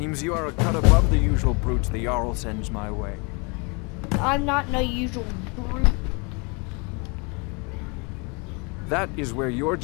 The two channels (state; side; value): quieter; right; 31.3 dB